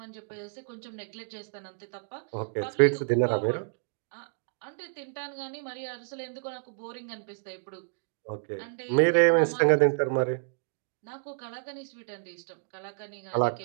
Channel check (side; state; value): left; silent; digital silence